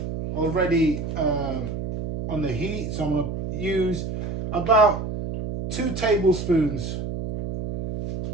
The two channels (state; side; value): noise; right; hum, 5 dB below the sound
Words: already on the heat. So I'm going to use about 2 tablespoons